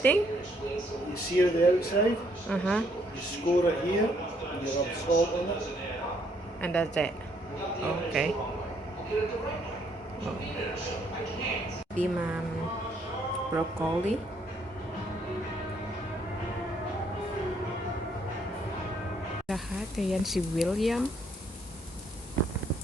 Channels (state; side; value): normal; both; correlation 0.69